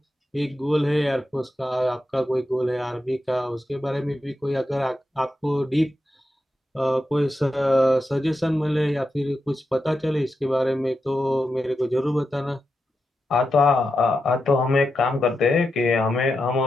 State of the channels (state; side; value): normal; both; correlation 0.88